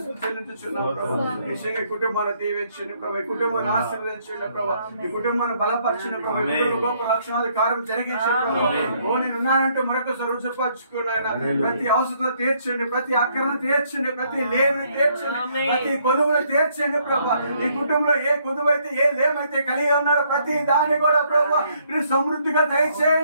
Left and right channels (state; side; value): inverted; both; correlation -0.69